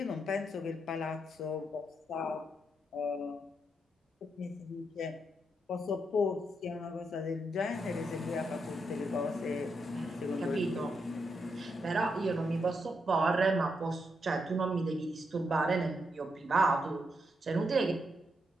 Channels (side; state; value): both; normal; correlation 0.81